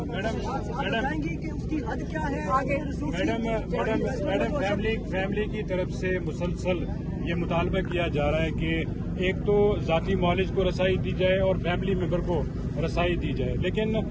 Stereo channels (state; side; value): identical; both; correlation 1.00